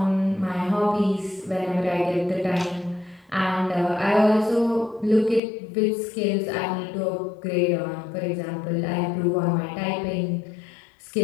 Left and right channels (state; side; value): drops out; right; at 5.4 s